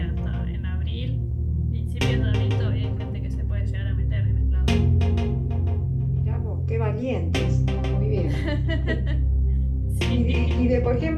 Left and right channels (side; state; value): both; identical; correlation 1.00